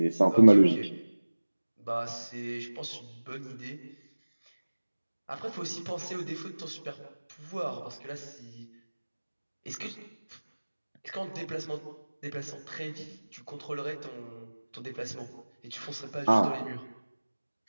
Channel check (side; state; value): both; inverted; correlation -1.00